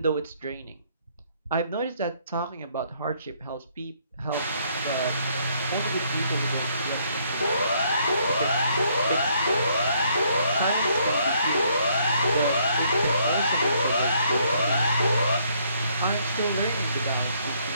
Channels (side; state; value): both; inverted; correlation -0.68